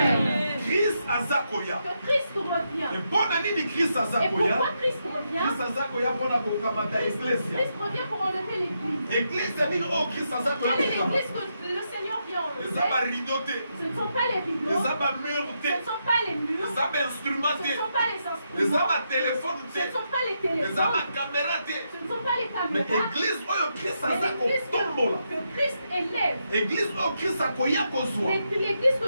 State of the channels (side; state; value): both; inverted; correlation -0.82